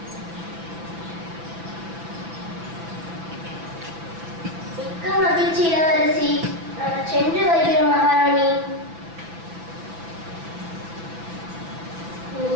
மிக்க மகிழ்ச்சி இளவரசி. நாங்கள் சென்று வருகிறோம் மகாராணி.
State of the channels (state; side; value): late; left; 6.0 ms